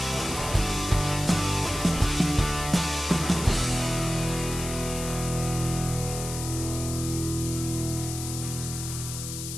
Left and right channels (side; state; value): left; noise; hiss, 7 dB below the sound